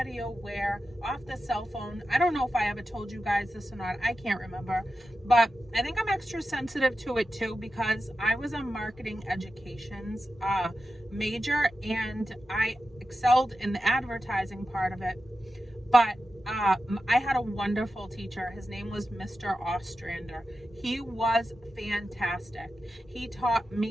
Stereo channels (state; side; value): normal; both; correlation 0.92